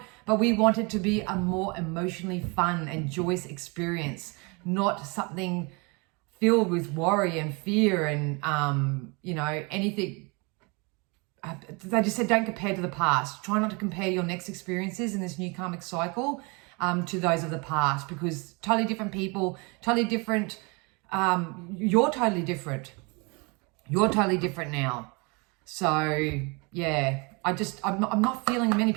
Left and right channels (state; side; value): quieter; left; 29.7 dB